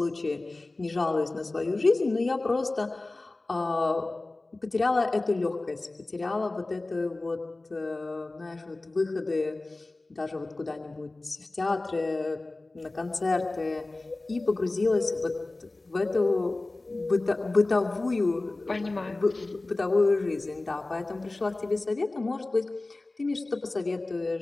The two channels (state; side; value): quieter; right; 3.0 dB